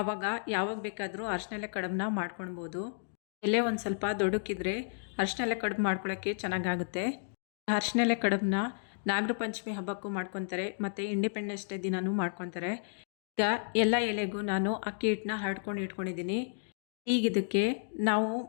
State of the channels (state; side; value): silent; right; digital silence